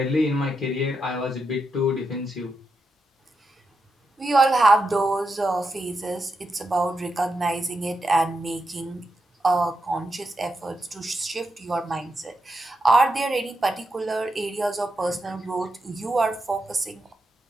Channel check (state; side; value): normal; both; correlation 0.85